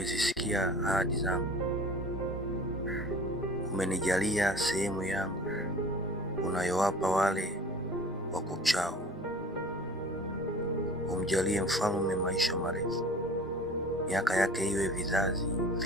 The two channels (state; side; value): normal; both; correlation 0.44